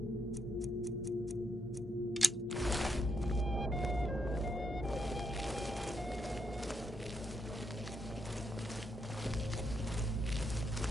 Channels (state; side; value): normal; both; correlation 0.79